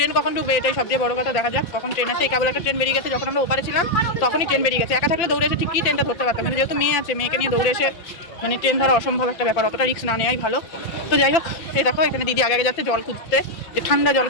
কখন ঢুকবে এটাই সবচেয়ে বড় কথা। দেখা যাক কখন ট্রেন আসে। এই কেবল একটা ট্রেন বেরিয়ে গেছে, যখন আমরা ওপারে ছিলাম তখনই ট্রেন বেরিয়ে গেছে। একা থাকলে দৌড়ে এসে ঠিকই ট্রেনটা ধরতে পারতাম, কিন্তু যেহেতু মেয়ে আছে, মেয়েকে নিয়ে দৌড়ে এসে মানে ট্রেন ধরা অসম্ভব একটা ব্যাপার, অতটা রিস্ক না নেওয়াই ভালো। তো যাই হোক, এই দেখো এখানে দিদি আগে যাচ্ছে জল খুঁজতে, যে ঠান্ডা জল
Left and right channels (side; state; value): right; late; 5.8 ms